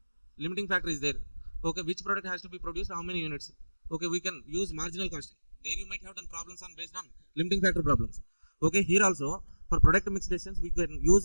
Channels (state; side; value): inverted; both; correlation -1.00